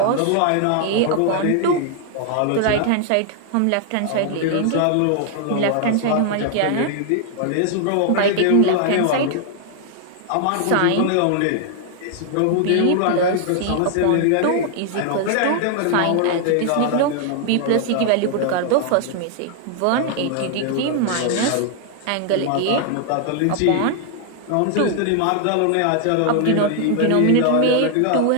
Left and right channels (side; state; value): both; different; correlation 0.00